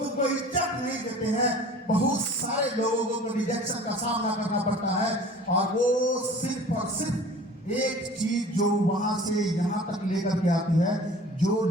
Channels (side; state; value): both; normal; correlation 0.45